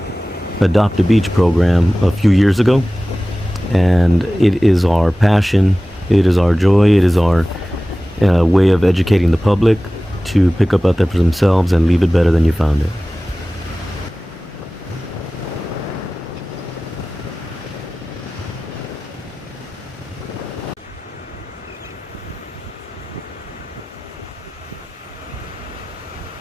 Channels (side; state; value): both; normal; correlation 0.97